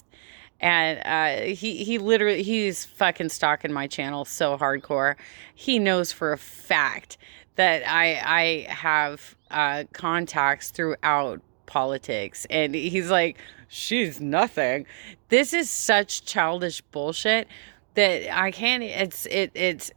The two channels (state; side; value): silent; left; digital silence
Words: And he literally, he's fucking stalking my channel so hardcore. He knows for a fact that I have contacts throughout politics. And he's like, she's nothing. This is such childish bullshit that I can't,